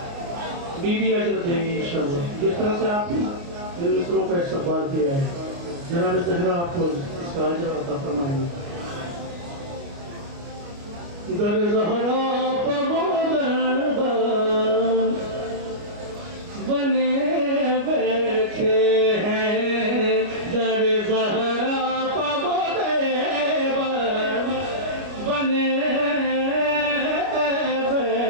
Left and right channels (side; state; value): left; late; 29 ms